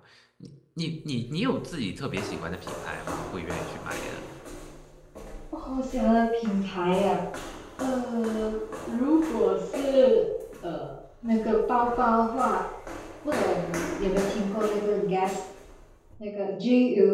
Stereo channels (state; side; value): identical; both; correlation 1.00